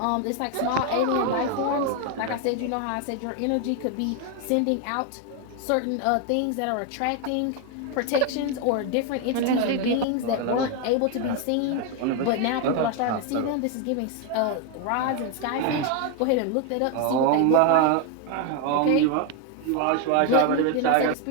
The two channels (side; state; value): both; different; correlation 0.01